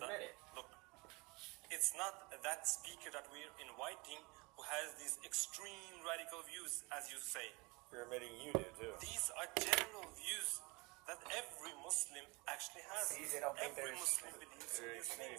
that, look, it's not that speaker that we're inviting who has these extreme radical views, as you say. You're admitting you do too. These are general views that every Muslim actually has. Every Muslim believes in these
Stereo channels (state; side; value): quieter; left; 26.3 dB